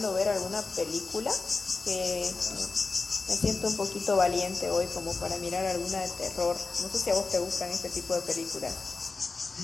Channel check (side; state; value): right; quieter; 4.0 dB